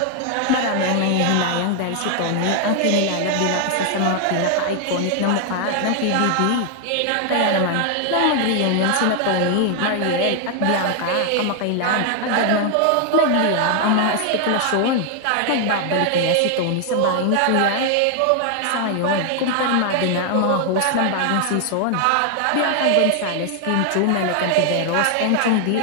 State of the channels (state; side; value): different; both; correlation 0.00